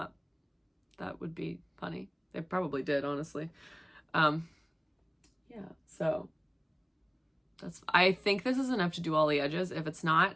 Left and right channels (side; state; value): both; identical; correlation 1.00